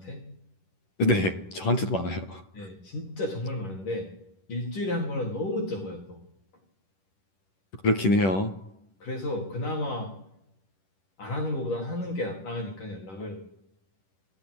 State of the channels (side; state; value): right; late; 10 ms